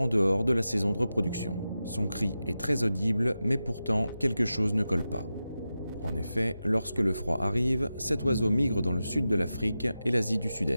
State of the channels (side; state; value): both; inverted; correlation -0.92